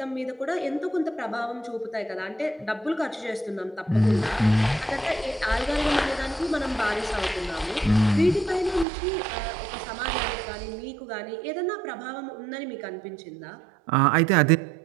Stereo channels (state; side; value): drops out; left; at 8.8 s